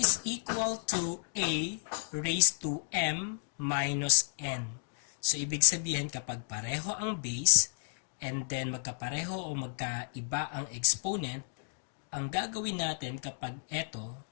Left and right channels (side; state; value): right; silent; digital silence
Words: equal to A raised to M minus N. So, ibig sabihin kapag pareho ang base and then magkapareho o magkaiba ang exponent, ang gagawin natin kapag ito